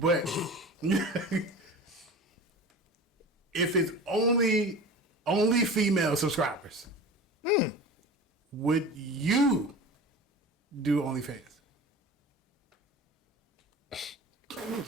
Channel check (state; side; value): normal; both; correlation 0.35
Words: if it's only female subscribers, would you do OnlyFans?